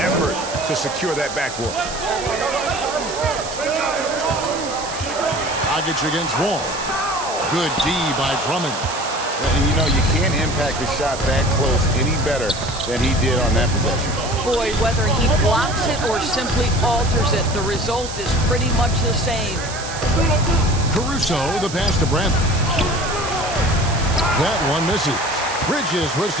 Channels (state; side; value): noise; right; hiss, 10 dB below the sound